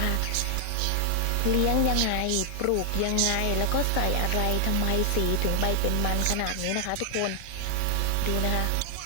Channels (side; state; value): both; different; correlation 0.00